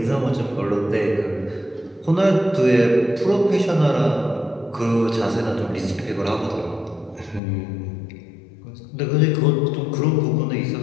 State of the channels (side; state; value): right; drops out; at 7.4 s